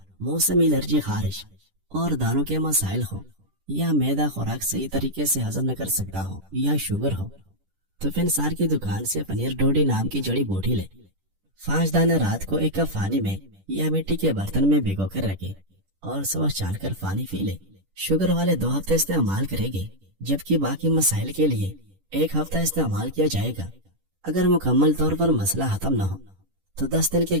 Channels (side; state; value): left; late; 10 ms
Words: موسمی الرجی، خارش اور دانوں کے مسائل ہو، یا معدہ خوراک صحیح طریقے سے ہضم نہ کر سکتا ہو، یا شوگر ہو، تو فنسار کی دکان سے پنیر ڈوڈی نام کی جڑی بوٹی لے۔ 5 دانے رات کو ایک کپ پانی میں یا مٹی کے برتن میں بھگو کر رکھے اور صبح چھان کر پانی پی لے۔ شوگر والے 2 ہفتے استعمال کریں گے، جبکہ باقی مسائل کے لیے 1 ہفتہ استعمال کیا جائے گا۔ اگر مکمل طور پر مسئلہ ختم نہ ہو تو 10 دن کے